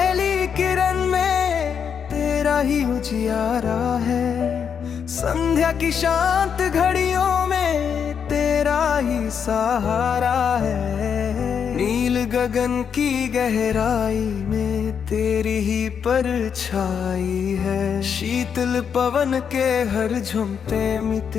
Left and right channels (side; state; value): right; quieter; 7.2 dB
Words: किरण में तेरा ही उजियारा है। संध्या की शांत घड़ियों में तेरा ही सहारा है। नील गगन की गहराई में तेरी ही परछाई है। शीतल पवन के हर झुमते में